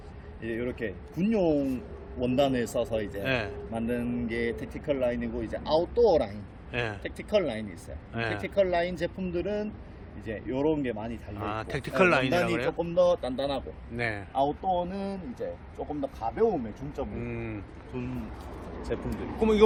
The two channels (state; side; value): identical; both; correlation 1.00